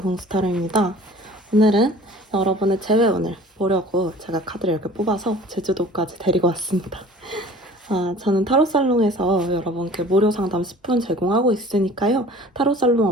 공스타르입니다. 오늘은 여러분의 재회원을 보려고 제가 카드를 이렇게 뽑아서 제주도까지 데리고 왔습니다. 저는 타로살롱에서 여러분께 무료 상담 10분 제공하고 있으니까요. 타로살롱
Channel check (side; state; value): both; normal; correlation 0.46